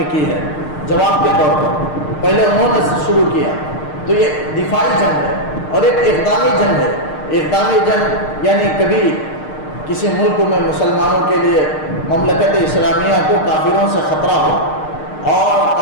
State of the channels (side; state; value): right; late; 6.6 ms